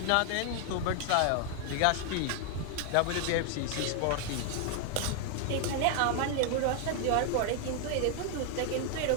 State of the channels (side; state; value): both; different; correlation 0.00